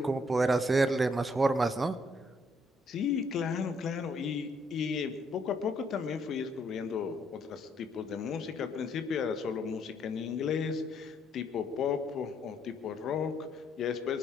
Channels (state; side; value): normal; both; correlation 0.70